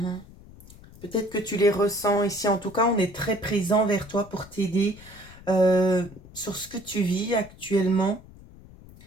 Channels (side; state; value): left; noise; rumble, 21 dB below the sound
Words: Peut-être que tu les ressens ici. En tout cas, on est très présent vers toi pour t'aider sur ce que tu vis actuellement.